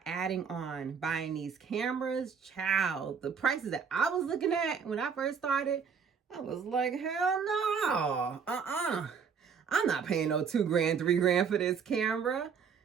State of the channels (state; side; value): quieter; left; 6.4 dB